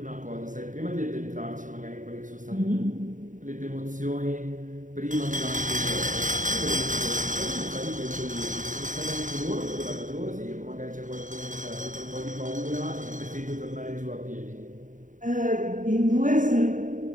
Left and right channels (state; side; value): late; left; 0.37 ms